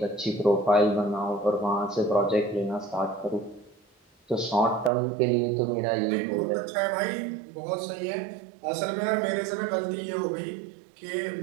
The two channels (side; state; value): left; drops out; at 4.9 s